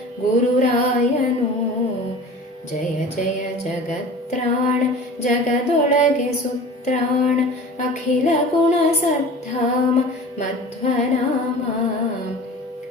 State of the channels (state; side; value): normal; both; correlation 0.39